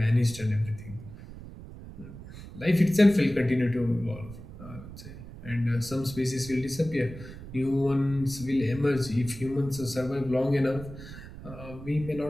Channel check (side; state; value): right; noise; rumble, 14 dB below the sound